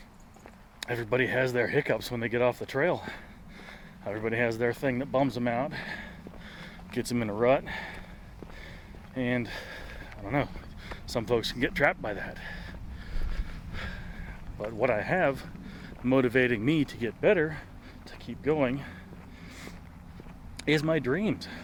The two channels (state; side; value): identical; both; correlation 1.00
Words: everybody has their hiccups when they get off the trail. Everybody has their thing that bums them out, gets them in a rut. And I don't know, some folks can get trapped by that. But what I have motivating me to get better, to keep going, is my dreams.